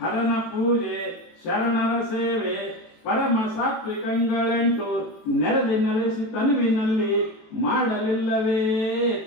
ಪೂಜೆ, ಶರಣರ ಸೇವೆ, ಪರಮ ಸಾತ್ವಿಕಂಗಳೆಂಟು ನೆರೆದಿ ನೆಲೆಸಿ ತನುವಿನಲ್ಲಿ ಮಾಡಲಿಲ್ಲವೇ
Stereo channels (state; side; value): late; right; 18 ms